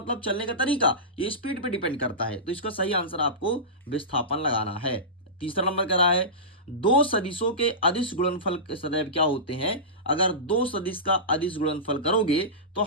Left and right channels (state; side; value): normal; both; correlation -0.19